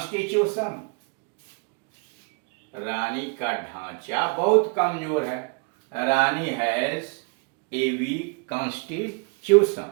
रानी का ढांचा बहुत कमजोर है। रानी हैज ए वीक कॉन्स्टिट्यूशन।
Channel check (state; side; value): quieter; left; 34.9 dB